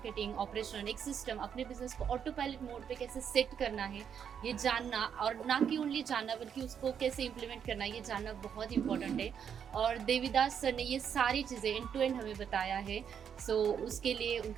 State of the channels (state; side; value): quieter; left; 7.9 dB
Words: ऑपरेशन, एक सिस्टम, अपने बिजनेस को ऑटो पायलट मोड पे कैसे सेट करना है, ये जानना, और ना कि ओनली जानना बल्कि उसको कैसे इंप्लीमेंट करना है, ये जानना बहुत इंपॉर्टेंट है. और देवीदास सर ने ये सारी चीज़ें एंड टू एंड हमें बताया है. सो उसके लिए